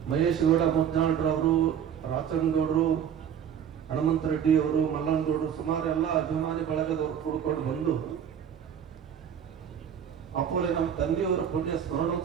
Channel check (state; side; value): quieter; left; 8.7 dB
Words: ಮಹೇಶ್ ಗೌಡ ಮುದ್ದಾಳ್ರವರು, ರಾಚನಗೌಡರು, ಹನುಮಂತ ರೆಡ್ಡಿ ಅವರು, ಮಲ್ಲನಗೌಡರು, ಸುಮಾರು ಎಲ್ಲ ಅಭಿಮಾನಿ ಬಳಗದವರು ಕೂಡ್ಕೊಂಡು ಬಂದು ಅಪ್ಪೋಲೆ ನಮ್ಮ ತಂದೆಯವರು ಪುಣ್ಯ